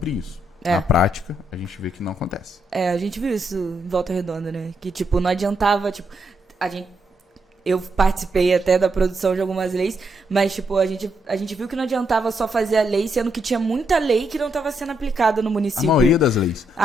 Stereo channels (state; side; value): normal; both; correlation 0.79